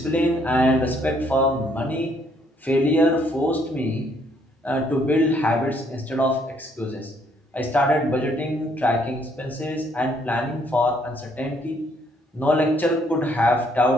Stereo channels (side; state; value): both; normal; correlation 0.67